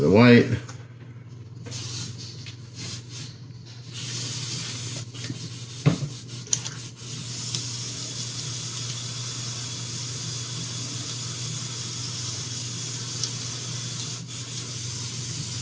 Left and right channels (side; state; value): both; identical; correlation 1.00